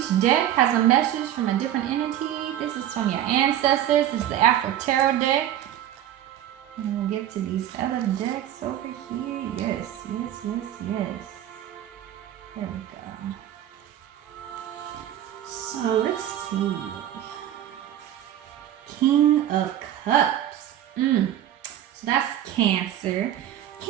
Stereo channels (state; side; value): quieter; left; 11.7 dB